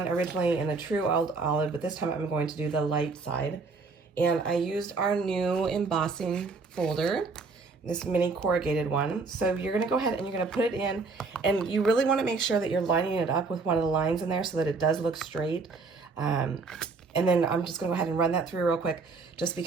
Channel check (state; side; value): quieter; left; 4.2 dB